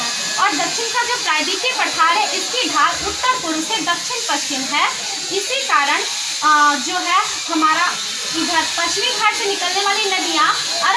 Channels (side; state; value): both; identical; correlation 1.00